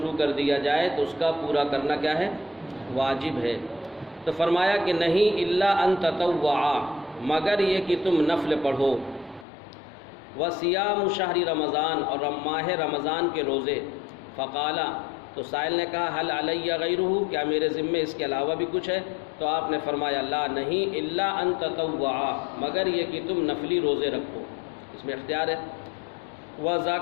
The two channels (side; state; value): right; drops out; at 9.5 s